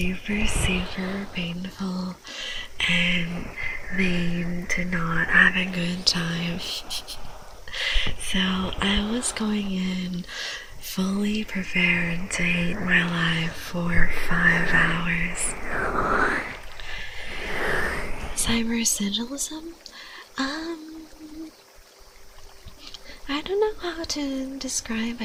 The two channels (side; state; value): both; identical; correlation 1.00